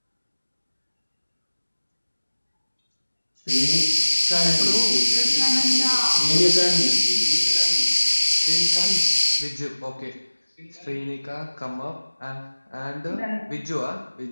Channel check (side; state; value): both; inverted; correlation -1.00